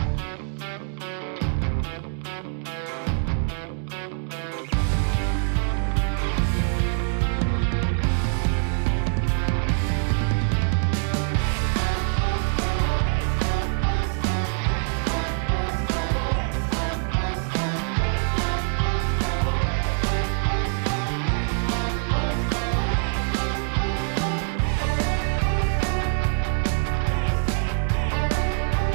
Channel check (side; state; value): left; silent; 56 dB below the other